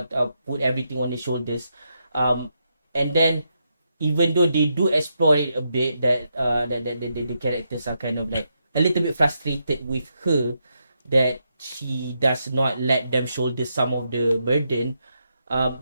put everything on the shoulders, and then even though they do explore it a bit, that the characters are kind of like a little bit frustrated with her, that she does not let them shoulder some of the burden.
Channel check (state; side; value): inverted; both; correlation -0.82